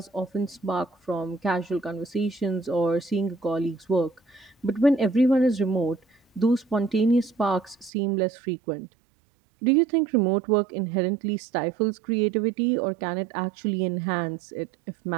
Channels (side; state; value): left; drops out; at 7.9 s